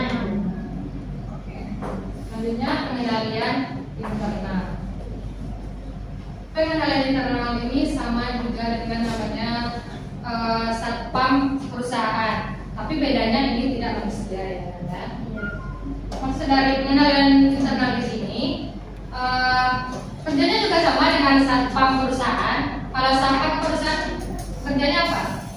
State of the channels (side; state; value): both; identical; correlation 1.00